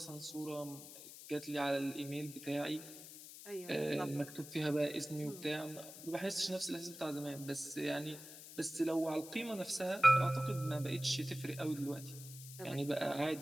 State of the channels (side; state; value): left; noise; hiss, 14 dB below the sound